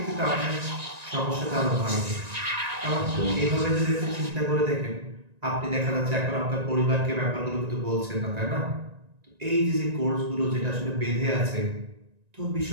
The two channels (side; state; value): left; late; 1.9 ms